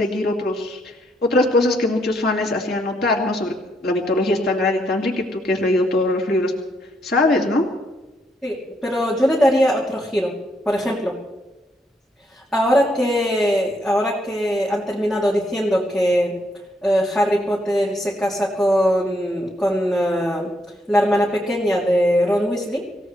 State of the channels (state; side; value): normal; both; correlation 0.75